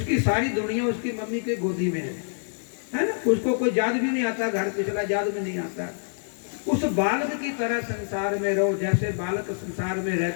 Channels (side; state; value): right; silent; 59 dB below the other